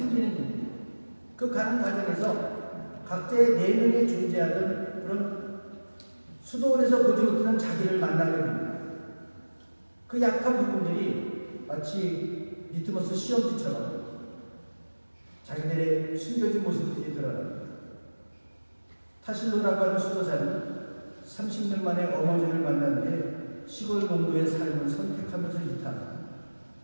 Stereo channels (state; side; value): inverted; both; correlation -1.00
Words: 일이에요. 그 가는 과정에서 각자의 4명이 존재하던 그런 수도원에서 보지 못하는 자기를 만나게 됩니다. 그 약한 부분들이 마치 리트머스 시험지처럼 자기들의 숨겨진 모습들이 드러납니다. 타실로라고 하는 수도사는 30년 만에 어머니를 만난 뒤에 시골 농부의 삶을 선택하면서 이탈하고,